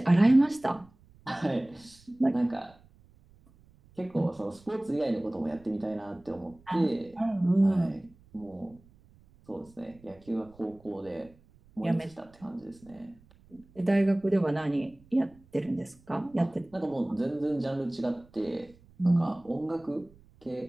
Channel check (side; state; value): right; noise; rumble, 27 dB below the sound